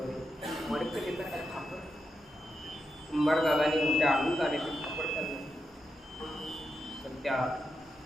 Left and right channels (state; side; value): normal; both; correlation 0.86